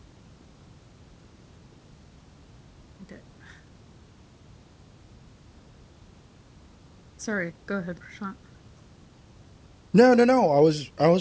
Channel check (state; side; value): identical; both; correlation 1.00